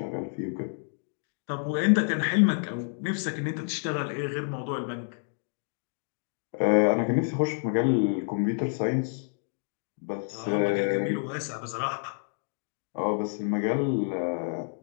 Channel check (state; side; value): silent; right; 59 dB below the other